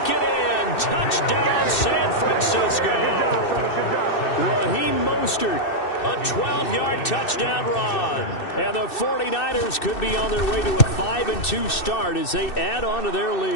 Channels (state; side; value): late; right; 2.6 ms